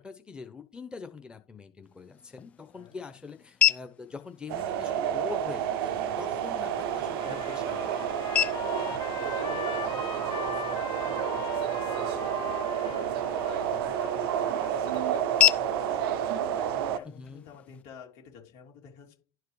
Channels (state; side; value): normal; both; correlation 0.07